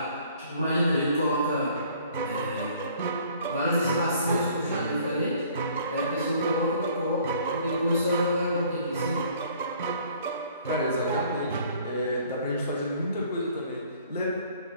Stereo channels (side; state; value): both; inverted; correlation -0.56